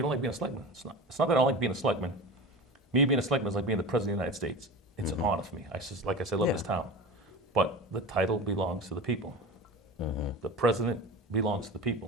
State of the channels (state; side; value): normal; both; correlation 0.30